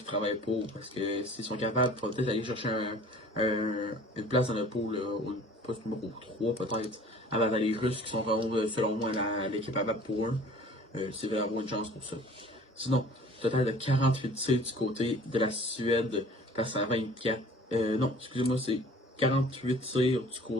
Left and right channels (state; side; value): normal; both; correlation 0.48